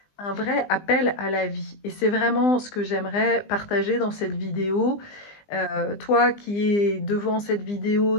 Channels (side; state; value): right; late; 20 ms